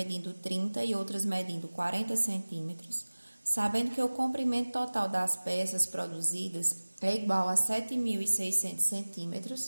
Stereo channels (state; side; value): inverted; both; correlation -1.00